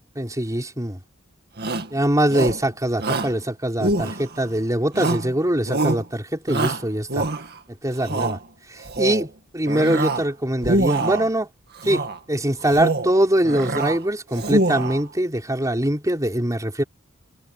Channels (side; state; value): both; normal; correlation 0.63